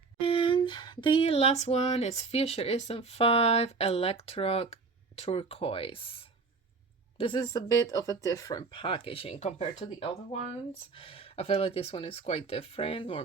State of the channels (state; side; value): quieter; left; 4.4 dB